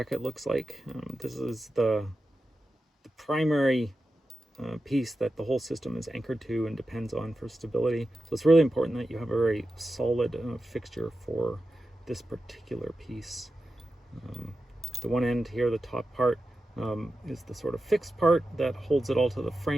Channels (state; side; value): normal; both; correlation 0.92